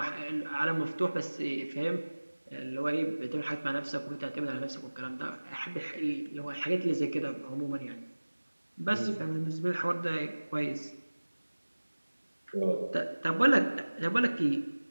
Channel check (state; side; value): inverted; both; correlation -1.00